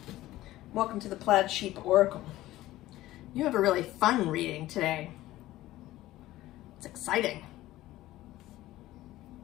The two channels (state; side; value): quieter; right; 15.9 dB